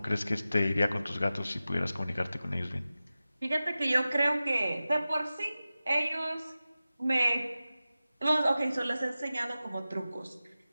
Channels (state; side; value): inverted; both; correlation -0.95